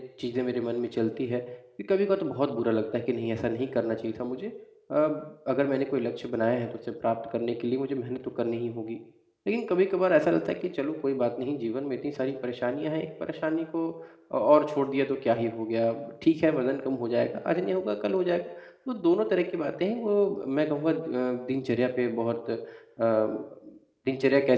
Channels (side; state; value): both; identical; correlation 1.00